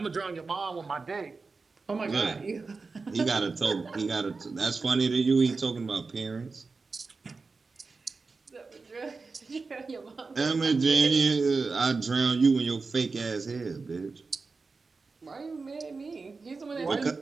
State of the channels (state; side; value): quieter; left; 4.2 dB